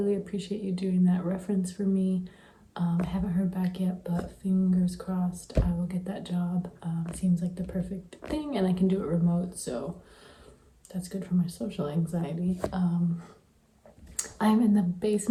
appreciate you doing that reference for me. I haven't heard back yet, but fingers crossed I will get that job. Seems like the perfect thing, and I can do it remote, so that's good for my social anxiety. I'm in the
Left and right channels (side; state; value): both; identical; correlation 1.00